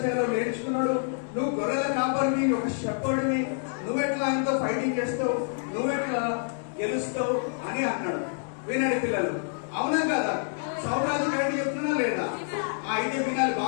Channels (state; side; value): silent; right; digital silence